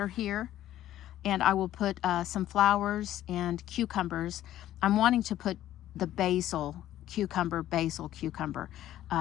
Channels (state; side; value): quieter; right; 12.9 dB